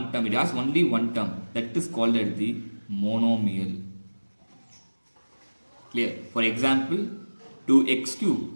term. It has only one term. That is called as the monomial. Clear? For example, 2x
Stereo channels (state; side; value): inverted; both; correlation -1.00